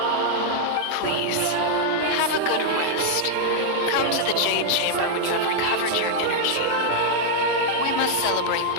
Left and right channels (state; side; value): different; both; correlation -0.01